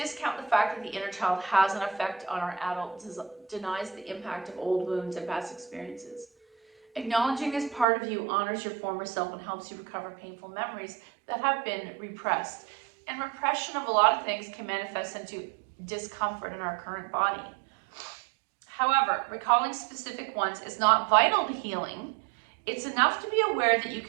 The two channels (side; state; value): left; drops out; at 7.9 s